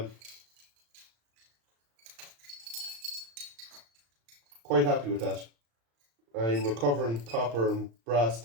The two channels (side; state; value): left; late; 35 ms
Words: Quite happy with that. I'm recovering copper and brass